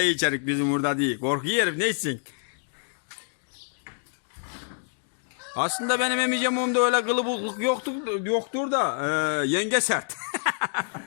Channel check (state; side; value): silent; right; 60 dB below the other